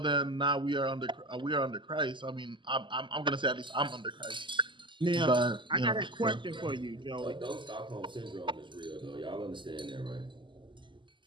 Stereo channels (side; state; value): left; late; 0.24 ms